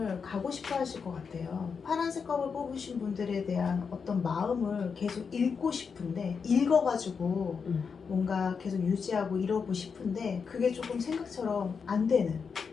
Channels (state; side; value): quieter; right; 5.8 dB